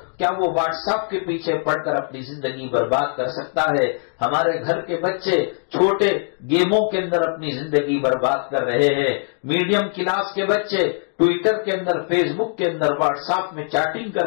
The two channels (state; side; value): silent; right; digital silence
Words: کیا وہ واٹس ایپ کے پیچھے پڑھ کر اپنی زندگی برباد کر سکتا ہے؟ ہمارے گھر کے بچے چھوٹے گیموں کے اندر اپنی زندگی برباد کر رہے ہیں، میڈیم کلاس کے بچے ٹویٹر کے اندر، فیس بک کے اندر، واٹس ایپ میں چیٹنگ